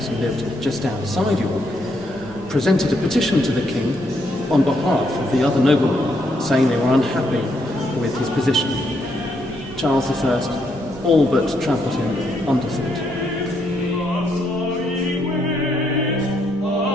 who lived just outside York, presented a petition to the king on behalf of the other noblemen, saying they were unhappy with his position. Charles I all but trampled him underfoot.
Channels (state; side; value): normal; both; correlation 0.75